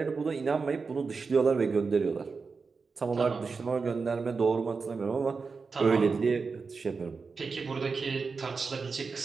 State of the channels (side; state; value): left; quieter; 4.7 dB